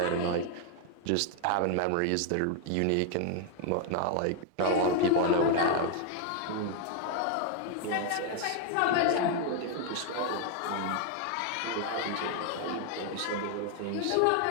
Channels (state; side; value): different; both; correlation 0.00